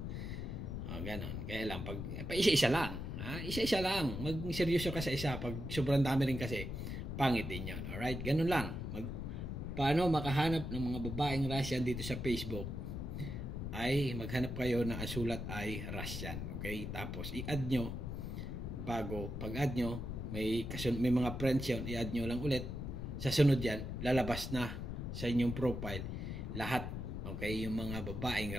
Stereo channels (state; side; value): noise; left; rumble, 5 dB below the sound